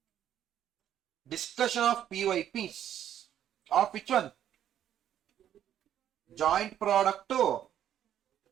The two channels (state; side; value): quieter; left; 10.6 dB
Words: PYPs. Of which one? Joint product to